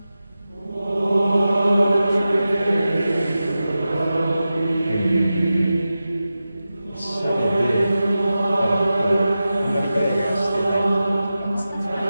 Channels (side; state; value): both; inverted; correlation -0.93